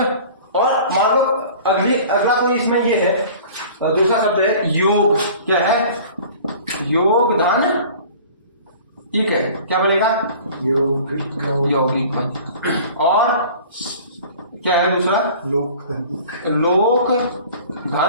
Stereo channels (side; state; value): both; inverted; correlation -0.44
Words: और मान लो अगला कोई इसमें ये है, दूसरा शब्द है योग। क्या है? योग धन इक है, क्या बनेगा? यौगिक यौगिक बन। और क्या है दूसरा? लोक लोक